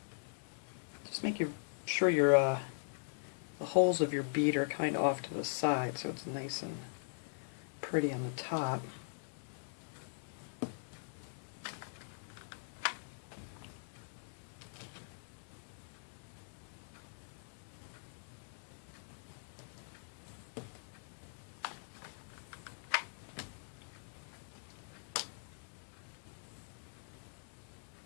Just make sure your the holes of your bead are kind of off to the side so it's nice and pretty on the top.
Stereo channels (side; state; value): right; silent; digital silence